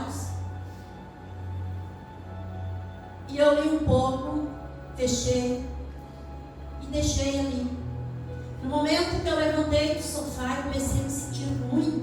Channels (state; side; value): identical; both; correlation 1.00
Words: E eu li um pouco, fechei e deixei ali. No momento que eu levantei do sofá, eu comecei a me sentir